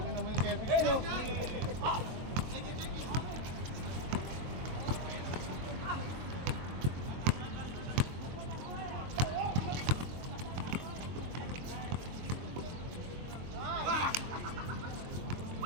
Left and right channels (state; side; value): late; left; 23 ms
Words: nyo naman yung Kevin nyo.